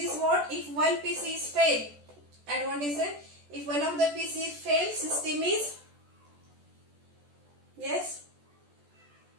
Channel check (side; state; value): left; late; 14 ms